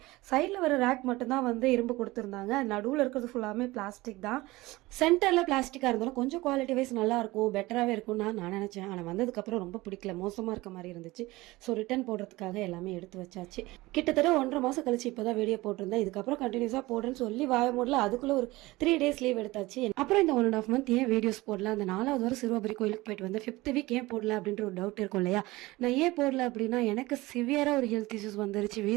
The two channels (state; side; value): quieter; left; 20.1 dB